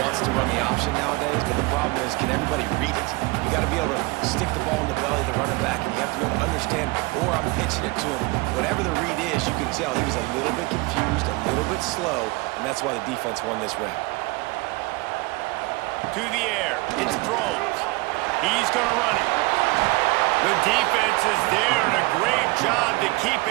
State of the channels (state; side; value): quieter; left; 23.9 dB